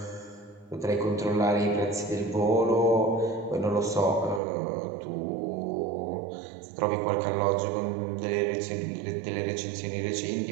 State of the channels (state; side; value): drops out; left; at 4.4 s